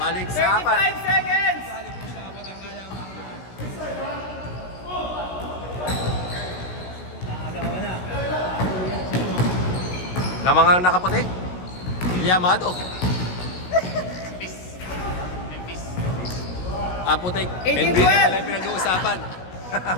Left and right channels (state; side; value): late; right; 16 ms